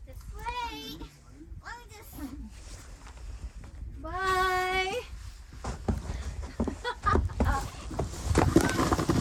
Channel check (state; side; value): identical; both; correlation 1.00